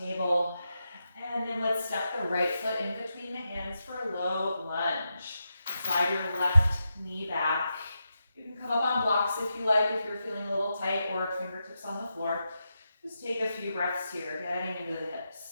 table. And then let's step the right foot in between the hands for a low lunge. Slide your left knee back. You can come up on blocks if you like, if you're feeling a little tight, or fingertips on the floor. Just take a few breaths here, getting into the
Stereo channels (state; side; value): inverted; both; correlation -0.87